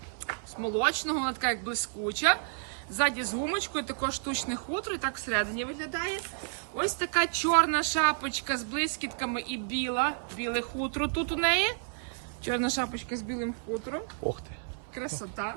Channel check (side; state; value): left; silent; 57 dB below the other